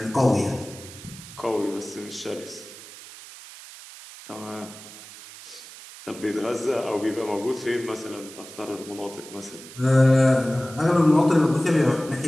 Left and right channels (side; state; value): right; noise; hiss, 16 dB below the sound